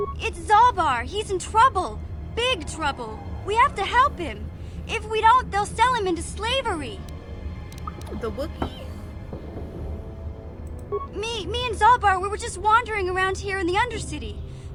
It's Zalbar. He's in trouble. Big trouble. We have to help him. If we don't, they'll sell him into slavery. The Wookiee? Me and Zalbar, we were just wandering around here in the Undercity.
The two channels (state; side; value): identical; both; correlation 1.00